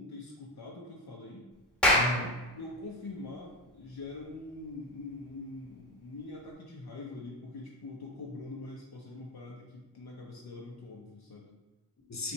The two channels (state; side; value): normal; both; correlation 0.18